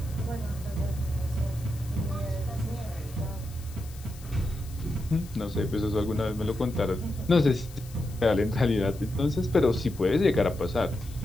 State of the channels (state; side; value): noise; left; hiss, 20 dB below the sound